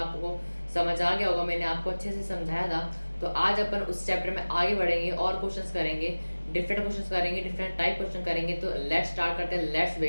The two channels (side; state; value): both; inverted; correlation -1.00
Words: समझ आ गया होगा, मैंने आपको अच्छे से समझाया था। तो आज अपन उस चैप्टर में आगे बढ़ेंगे और क्वेश्चंस करेंगे, डिफरेंट क्वेश्चंस करेंगे, डिफरेंट टाइप क्वेश्चन करेंगे। तो लेट्स स्टार्ट करते हैं, लेट्स